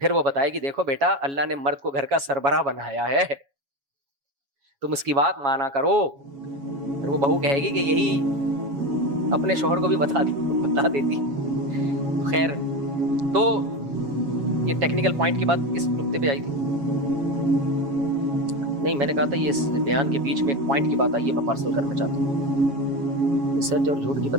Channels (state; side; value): late; left; 7.2 ms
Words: پھر وہ بتائے گی دیکھو بیٹا اللہ نے مرد کو گھر کا سربراہ بنایا ہے، تم اس کی بات مانا کرو۔ پھر وہ بہو کہے گی کہ یہی اپنے شوہر کو بھی بتا دیتی۔ خیر، تو یہ ٹیکنیکل پوائنٹ کی بات کس نقطے پہ آئی تھی؟ نہیں، میں نے کہا تھا یہ اس بیان کے بیچ میں ایک پوائنٹ کی بات آئی ہے، میں پارسل کرنا چاہتا ہوں، سچ اور جھوٹ کی